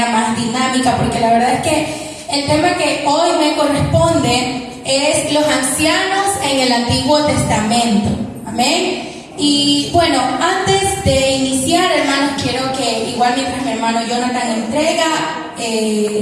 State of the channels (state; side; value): identical; both; correlation 1.00